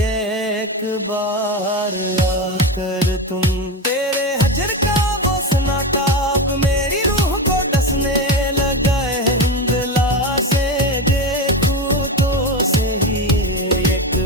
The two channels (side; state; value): both; normal; correlation 0.19